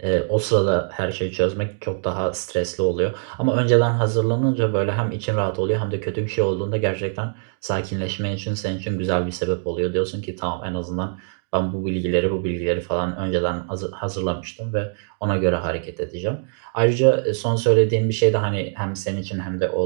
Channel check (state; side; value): silent; left; 63 dB below the other